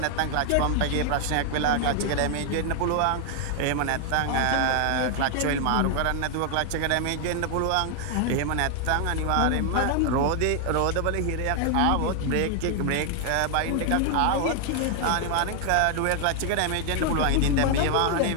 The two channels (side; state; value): both; different; correlation 0.00